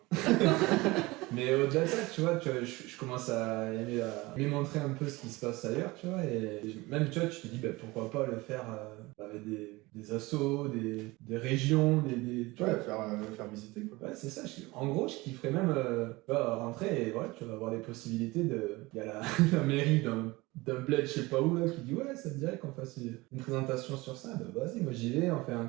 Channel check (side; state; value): left; quieter; 21.9 dB